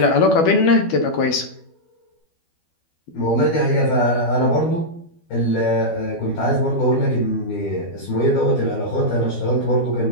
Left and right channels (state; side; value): late; right; 12 ms